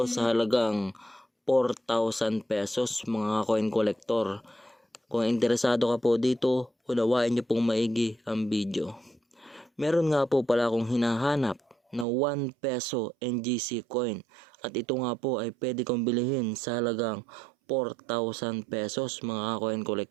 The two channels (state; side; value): drops out; left; at 12.1 s